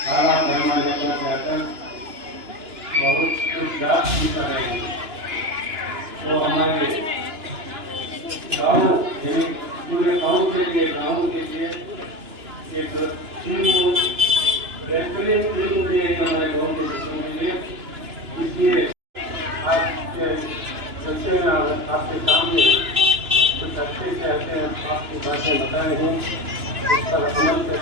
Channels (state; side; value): late; left; 2.9 ms